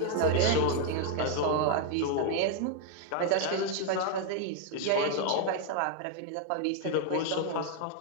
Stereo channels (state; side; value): different; both; correlation 0.00